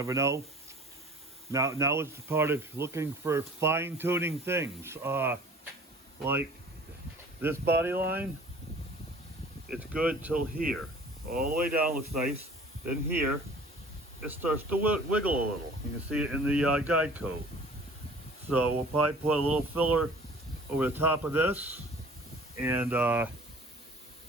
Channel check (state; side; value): normal; both; correlation 0.48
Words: know. Now it's the part of looking for fine-tuning things. Like this body line, it's good till here. All the way down looks nice. Then here, it starts to wiggle a little. You can see it in the guide coat. So we'll probably put a little filler over the top of this, and put